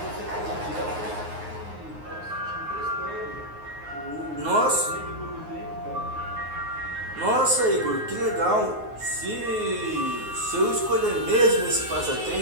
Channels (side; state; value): left; late; 9.5 ms